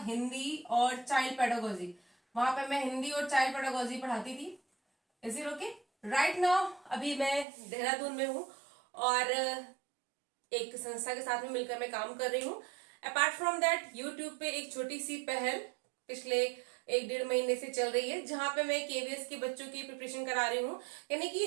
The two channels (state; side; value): drops out; left; at 7.5 s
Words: हिंदी और चाइल्ड पेडागोजी। वहां पे मैं हिंदी और चाइल्ड पेडागोजी पढ़ाती थी। Is it okay? Right now अभी मैं देहरादून में हूँ और एक संस्था के साथ में मिलकर मैं काम कर रही हूँ। अपार्ट फ्रॉम दैट, यूट्यूब पे एक छोटी सी पहल पिछले 1-1.5 महीने से चल रही है, जहां पे मैं केवीएस के बच्चों की प्रिपरेशन करा रही हूँ। यानी कि